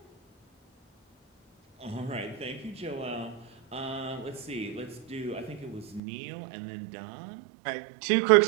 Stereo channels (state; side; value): drops out; left; at 6.0 s